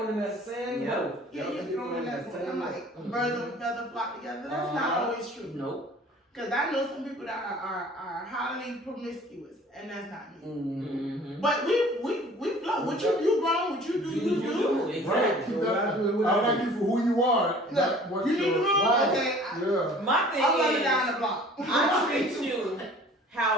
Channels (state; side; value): normal; both; correlation 0.49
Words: in that sand Yep. boat. Yeah, you get thrown in that boat. I'm like, birds of a feather flock together. That's not always true. Nope. Because I know some people that are highly promiscuous, and that's not me. Mm-hmm. But we flow. What you grown, what you do, you do. Right. Exactly. Keep that. I like you for who you are. not what You need you're- to know. Right. Okay, Yeah. My thing I'm running is, down the block. I treat you